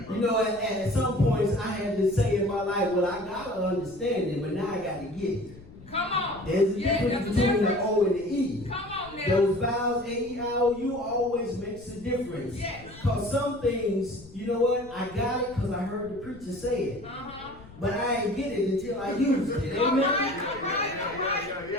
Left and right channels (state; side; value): noise; left; rumble, 20 dB below the sound